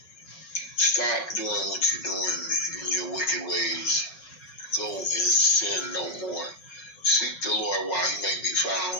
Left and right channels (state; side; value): late; right; 5.4 ms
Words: stop doing what you're doing in your wicked ways. Go and sin no more. Seek the Lord while he may be